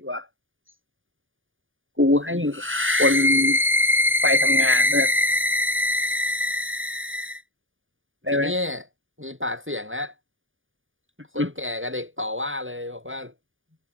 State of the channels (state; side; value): late; left; 0.58 ms